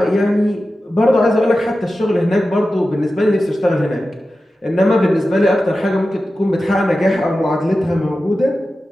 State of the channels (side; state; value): both; normal; correlation 0.93